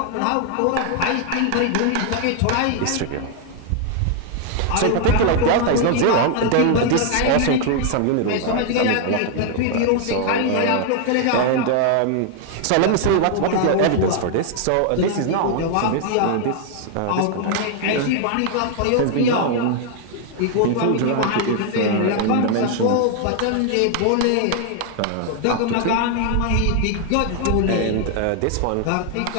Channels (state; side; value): different; both; correlation 0.00